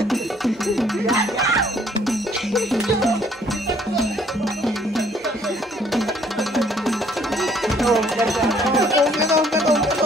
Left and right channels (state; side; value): normal; both; correlation 0.62